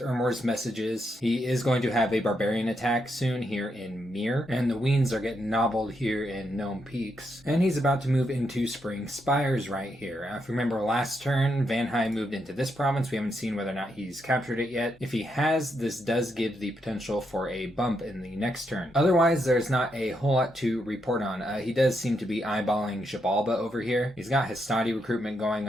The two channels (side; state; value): both; normal; correlation 0.80